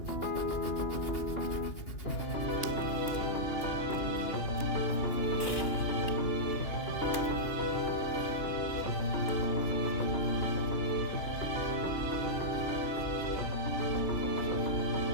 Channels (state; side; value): late; right; 3.0 ms